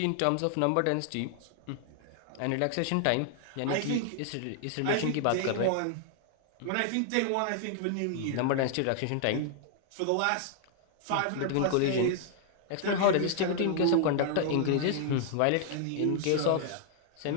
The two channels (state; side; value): different; both; correlation -0.01